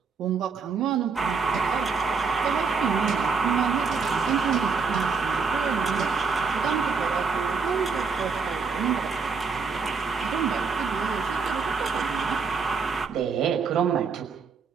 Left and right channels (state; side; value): quieter; left; 5.2 dB